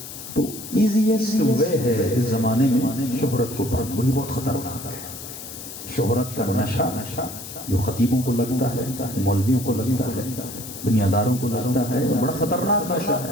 تو ایزیسٹ وے ہے اس زمانے میں شہرت کو پانا. یہ بہت خطرناک ہے. شہرت کا نشہ جو خطیبوں کو لگتا ہے، مولویوں کو لگتا ہے، دنیاداروں کو لگتا ہے، بڑا خطرناک نشہ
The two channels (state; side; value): noise; left; hiss, 11 dB below the sound